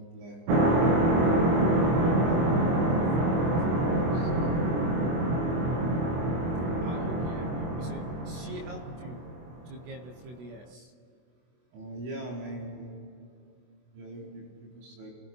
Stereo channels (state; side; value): late; left; 24 ms